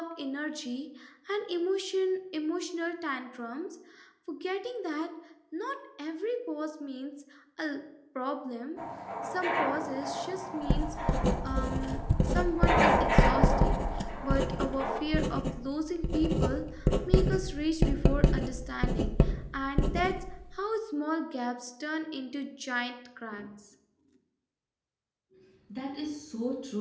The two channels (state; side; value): identical; both; correlation 1.00